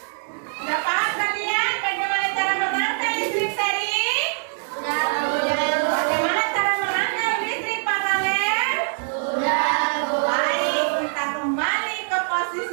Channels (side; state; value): left; silent; digital silence